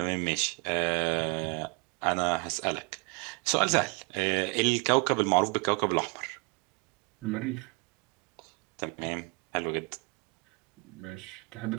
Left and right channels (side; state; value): left; quieter; 30.1 dB